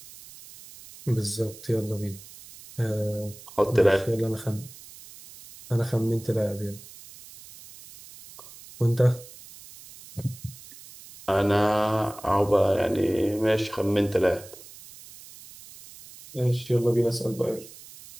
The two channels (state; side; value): noise; right; hiss, 19 dB below the sound